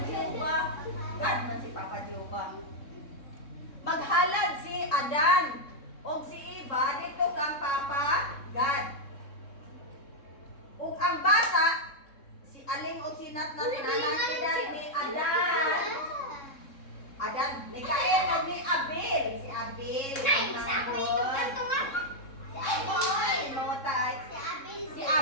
Jehovah. God man si Papa Jehovah. Maghalad si Adan o si Eva dito kang Papa God. Ug ang bata si Aling o si Nat na tinanakidan ni Adan. Adan, ni Cain o ni Abel. Si Abel. Nay, sa ako ito kanto nga. Si Abel. Mawatay. Si Abel. Si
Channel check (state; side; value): late; right; 3.7 ms